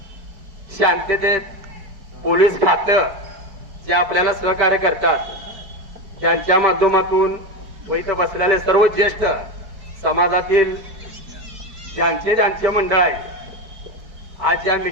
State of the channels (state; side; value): late; left; 4.6 ms